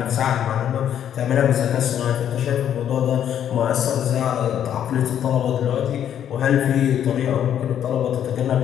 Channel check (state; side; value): quieter; right; 9.8 dB